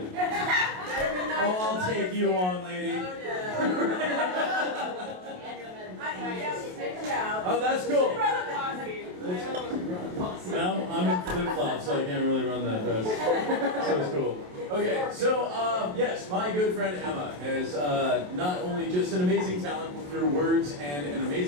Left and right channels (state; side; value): late; left; 27 ms